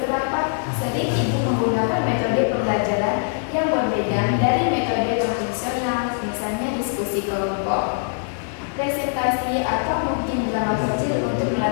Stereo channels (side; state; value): right; silent; 61 dB below the other